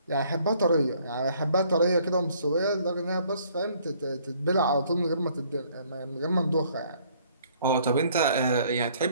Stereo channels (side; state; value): both; inverted; correlation -0.62